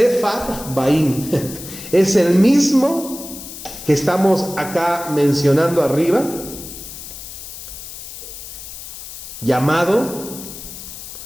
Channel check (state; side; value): noise; left; hiss, 12 dB below the sound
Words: es el mismo que estamos acá mencionando arriba, llamado